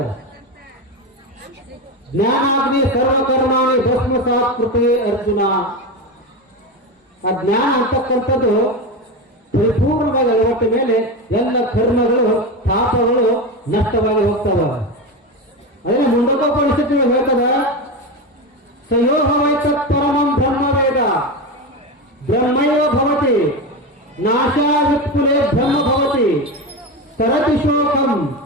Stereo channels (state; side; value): normal; both; correlation 0.19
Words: ಜ್ಞಾನಾಗ್ನಿ ಸರ್ವಕರ್ಮಾಣಿ ಭಸ್ಮಸಾತ್ ಕೃತಿ ಅರ್ಜುನ. ಆ ಜ್ಞಾನ ಅಂತಕ್ಕಂಥದ್ದು ಪರಿಪೂರ್ಣವಾಗಿ ಅಳವಟ್ಟ ಮೇಲೆ ಎಲ್ಲ ಕರ್ಮಗಳು ಪಾಪಗಳು ನಷ್ಟವಾಗಿ ಹೋಗ್ತವ. ಅದೇ ಮುಂಡಕೋಪನಿಷತ್ತು ಹೇಳ್ತದ, ಸಯೋಹವೈತ ಪರಮಂ ಬ್ರಹ್ಮವೇದ ಬ್ರಹ್ಮೈವ ಭವತಿ ನಾಶಾವಿತ್ಕುಲೆ ಬ್ರಹ್ಮ ಭವತಿ ತರತಿ ಶೋಕಂ